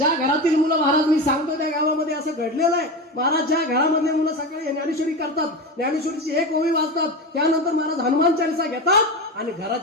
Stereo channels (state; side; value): normal; both; correlation 0.22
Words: घरातील मुलं महाराज मी सांगतो त्या गावामध्ये असं घडलेलं आहे महाराज. ज्या घरामध्ये मुलं सकाळी ज्ञानेश्वरी करतात, ज्ञानेश्वरीची एक ओवी वाचतात, त्यानंतर महाराज हनुमान चालीसा घेतात आणि